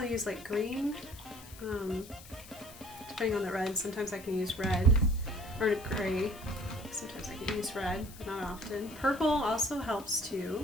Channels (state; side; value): noise; left; hiss, 18 dB below the sound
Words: use like green, depending on the red. Sometimes I can use red or gray. Sometimes I can use red, but not often. Purple also helps too.